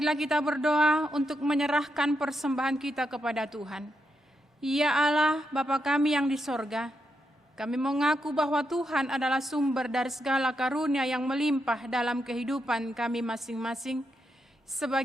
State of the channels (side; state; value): both; normal; correlation 0.83